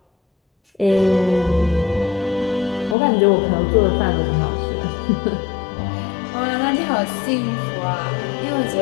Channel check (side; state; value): right; drops out; at 3.0 s